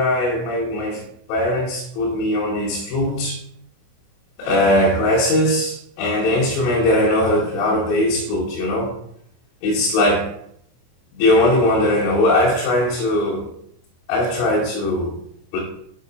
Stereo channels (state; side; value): late; right; 24 ms